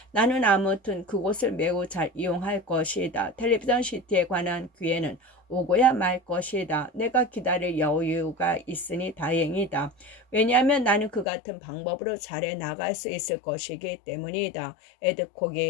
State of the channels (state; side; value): drops out; right; at 11.2 s